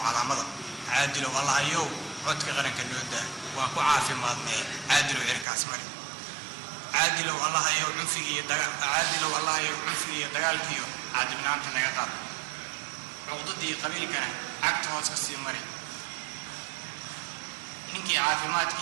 calaamada caadilow allahayow codka qaranka nooda waan ku caafimaadnay caadilow cirkaas mari caadilow allahayow cunfigiiyo dagaalkiiyo caadibnaanta naga qaad cuqdadii qabiilkana cagta hoos ka sii mari ninkii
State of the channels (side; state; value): left; drops out; at 5.5 s